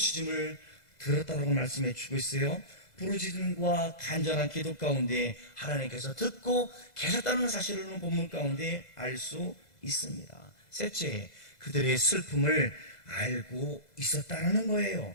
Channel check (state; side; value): late; right; 2.0 ms